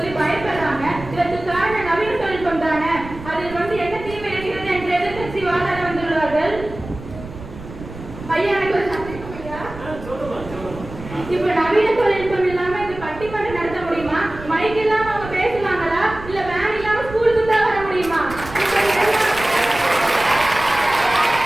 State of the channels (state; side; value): noise; right; rumble, 14 dB below the sound